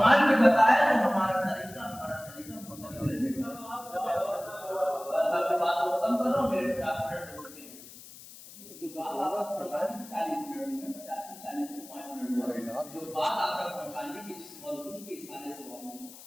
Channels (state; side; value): noise; left; hiss, 17 dB below the sound